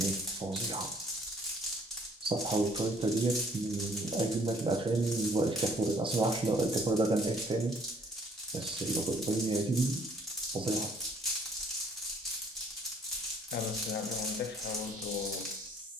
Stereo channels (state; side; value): normal; both; correlation 0.60